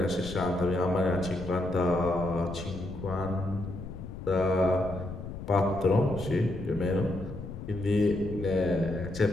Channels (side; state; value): left; noise; rumble, 10 dB below the sound